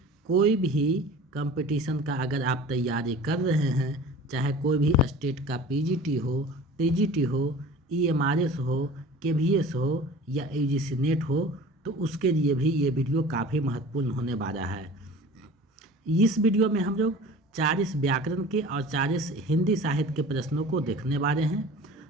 कोई भी कंपटीशन का अगर आप तैयारी कर रहे हैं, चाहे कोई भी स्टेट का पीजीटी हो, टीजीटी हो, ईएमआरएस हो, केवीएस हो या यूजीसी नेट हो, तो उसके लिए भी ये वीडियो काफ़ी महत्वपूर्ण होने वाला है। इस वीडियो में हम लोग 40 व्याकरण के और 40 हिंदी साहित्य के प्रश्नों को देखने वाले हैं।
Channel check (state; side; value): normal; both; correlation 0.41